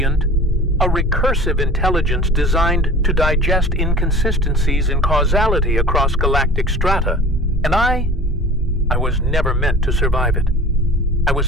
a recursive intelligence designed to digest inconsistencies in causality across galactic strata. And I was never meant to survive it. I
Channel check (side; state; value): both; normal; correlation 0.41